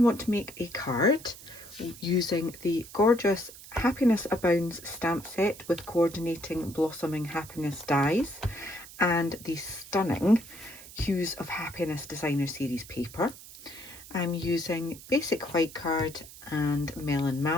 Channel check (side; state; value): right; noise; hiss, 17 dB below the sound